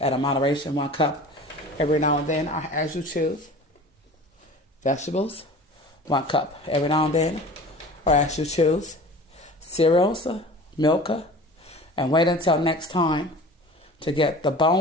a moderation, 1 cup every now and then, as you choose. Vegetables, 1 cup every now and then, or as you choose. Cereals, milk, and wait until next time to get the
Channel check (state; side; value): normal; both; correlation 0.40